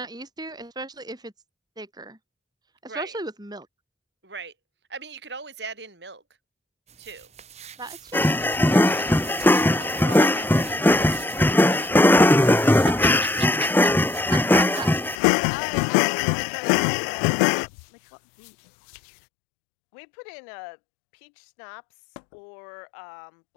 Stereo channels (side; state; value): right; drops out; at 15.2 s